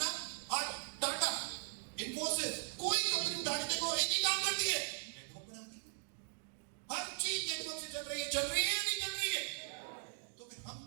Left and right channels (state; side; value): silent; left; digital silence